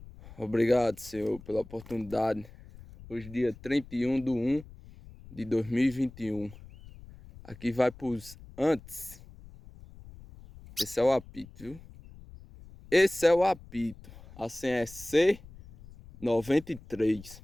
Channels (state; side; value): noise; left; rumble, 19 dB below the sound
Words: Obrigado, Senhor, pela oportunidade. Hoje, dia 31/1/2021. Aqui vai pros antes. Esse é o apito, viu? Esse é o apito. A senha é C93.